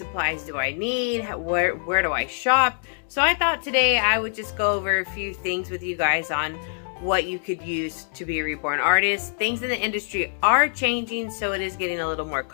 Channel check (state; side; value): silent; right; digital silence